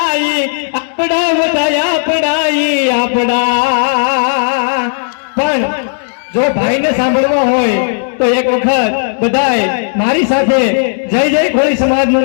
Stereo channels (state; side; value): silent; right; digital silence